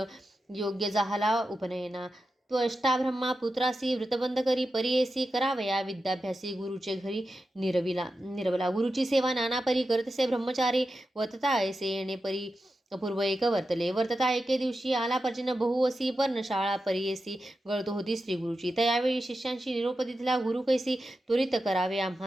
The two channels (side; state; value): both; normal; correlation 0.90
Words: योग्य झाला उपनयना. त्वष्टा ब्रह्मा पुत्रासी, व्रतबंध करी परीयसी, करावया विद्याभ्यासी, गुरुचे घरी निरवला. गुरुची सेवा नाना परी करतसे ब्रह्मचारी, वर्तता ऐसे येणे परी अपूर्व एक वर्तले. वर्तता एके दिवशी आला पर्जन्य बहुवसी, पर्णशाळा परीयसी, गळतो होती श्री गुरुची. त्यावेळी शिष्यांशी निरोप दिला गुरु कैसी, त्वरित करावे